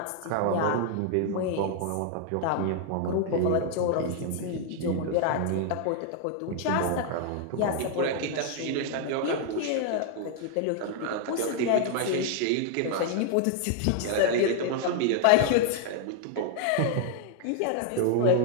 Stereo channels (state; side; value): different; both; correlation 0.00